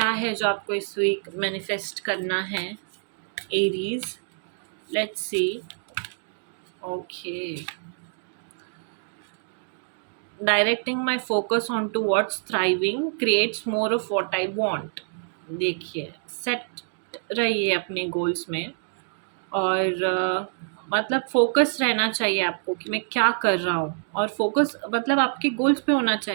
है जो आपको इस वीक मैनिफेस्ट करना है, Aries? Let's see. Okay, directing my focus on to what's thriving creates more of what I want. देखिए, सेट रहिए अपने गोल्स में, और मतलब फोकस रहना चाहिए आपको कि मैं क्या कर रहा हूँ, और फोकस मतलब आपके गोल्स पे होना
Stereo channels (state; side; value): silent; left; digital silence